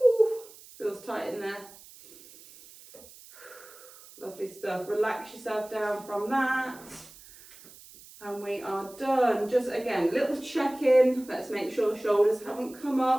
feels tight in there. Lovely stuff. Relax yourself down from that. And we are done. Just again, little check-in. Let's make sure the shoulders haven't come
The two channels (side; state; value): right; noise; hiss, 21 dB below the sound